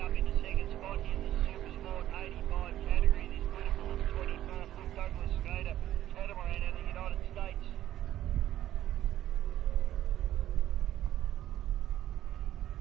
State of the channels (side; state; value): left; quieter; 12.8 dB